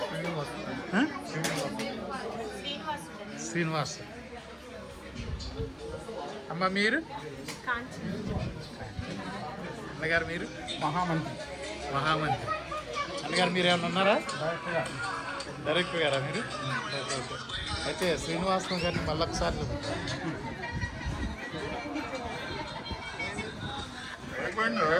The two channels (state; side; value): identical; both; correlation 1.00